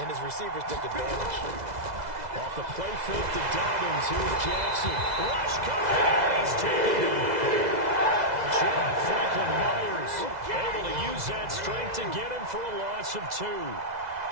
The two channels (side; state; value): left; late; 2.0 ms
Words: his receivers took advantage. Off the play fake to Dobbins. Here's Jackson. Rush coming, and he's taken it. John Franklin Myers able to use that strength to get him for a loss of 2.